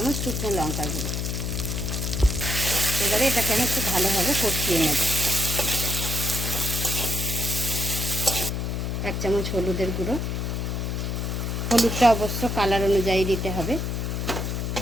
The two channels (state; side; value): noise; left; hum, 2 dB below the sound